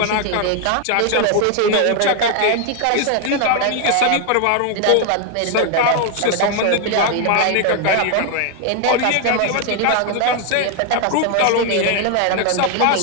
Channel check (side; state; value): both; different; correlation 0.01